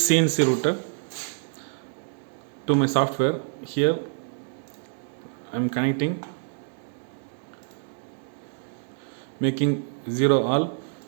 CNC router to my software. Here I am connecting, making 0 all.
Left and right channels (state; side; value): silent; left; digital silence